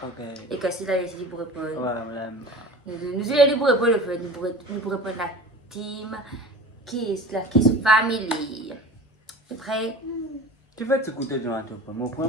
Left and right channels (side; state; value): both; normal; correlation 0.38